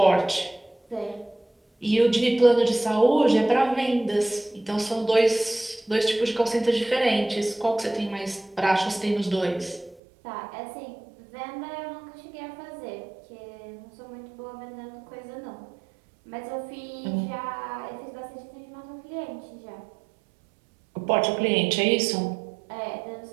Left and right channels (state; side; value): drops out; left; at 10.0 s